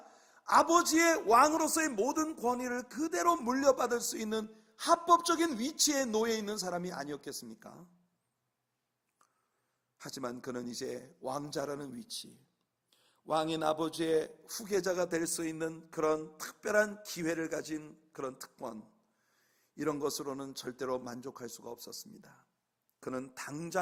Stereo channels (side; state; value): both; identical; correlation 1.00